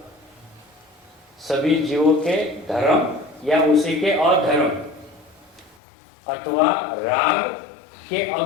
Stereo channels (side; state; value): right; drops out; at 5.8 s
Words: सभी जीवों के धर्म या उसी के अधर्म अथवा राग के